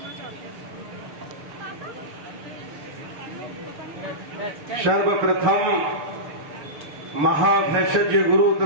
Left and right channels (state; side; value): late; left; 6.9 ms